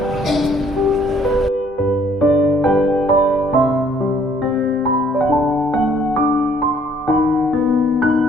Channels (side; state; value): both; normal; correlation 0.62